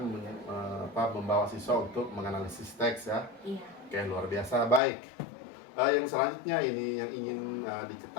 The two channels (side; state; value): right; drops out; at 4.8 s